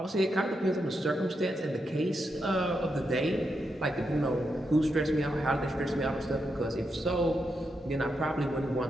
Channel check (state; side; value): normal; both; correlation 0.84